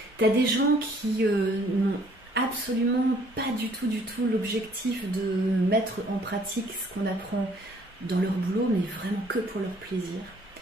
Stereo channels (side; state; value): both; normal; correlation 0.60